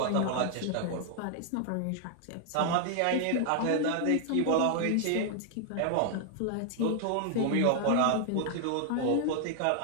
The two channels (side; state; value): both; different; correlation 0.00